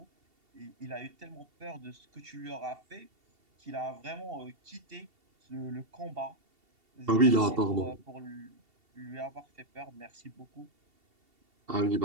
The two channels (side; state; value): left; late; 2.7 ms